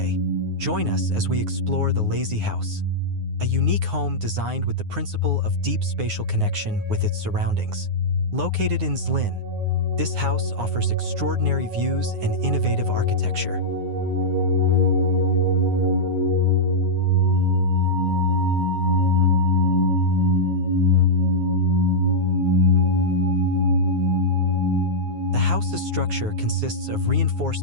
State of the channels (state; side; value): late; left; 9.5 ms